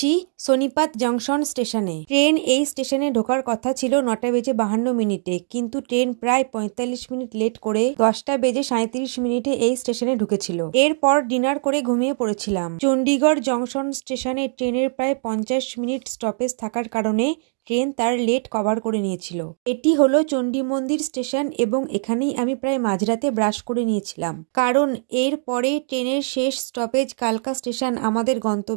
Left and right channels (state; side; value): silent; left; digital silence